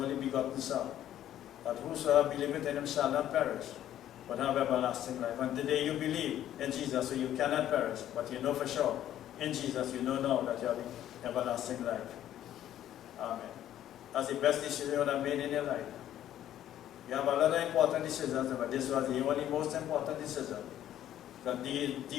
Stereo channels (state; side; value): quieter; right; 11.8 dB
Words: begotten Son, that whosoever believeth in Him shall not perish, but have everlasting life. And today you believe in Jesus, so you cannot perish, but you know for sure, in Jesus you know now that you have everlasting life. Amen. That's the best decision you have made in your life. You have a lot of important decisions, but this was the only most important decision that